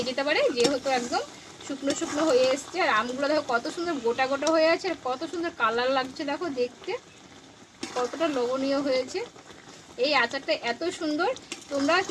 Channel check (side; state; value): both; identical; correlation 1.00